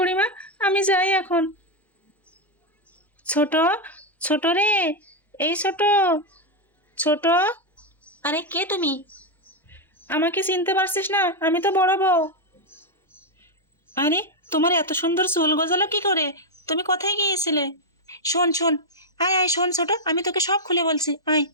আমি যাই এখন। ছোট, ছোট রে, এই ছোট, ছোট। আরে কে তুমি? আমাকে চিনতে পারছিস না? আমি তো বড় বউ। আরে তোমার এত সুন্দর চুল গজালো কি করে? তুমি কোথায় গিয়েছিলে? শোন শোন, আয় আয়, শোন ছোট, আমি তোকে সব খুলে বলছি, আয়।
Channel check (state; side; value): normal; both; correlation 0.02